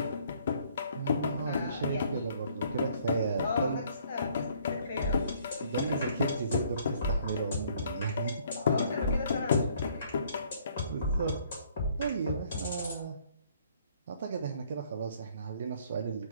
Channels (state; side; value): inverted; both; correlation -0.62